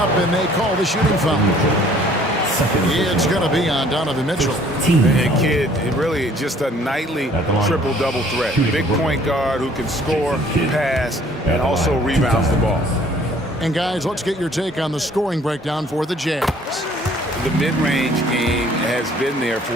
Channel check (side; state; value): both; normal; correlation 0.57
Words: and they call the shooting foul. It's going to be on Donovan Mitchell. And Kidd, really just a nightly triple-double threat. Big point guard who can score, pass, and also rebounds the ball. And guys, let's get your take on the scoring breakdown for the Jazz. The mid-range game has been there